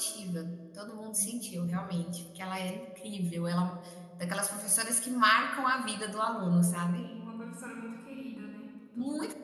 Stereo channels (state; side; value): identical; both; correlation 1.00